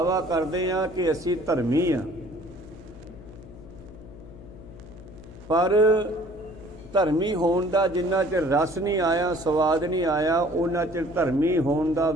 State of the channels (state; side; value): noise; left; hum, 17 dB below the sound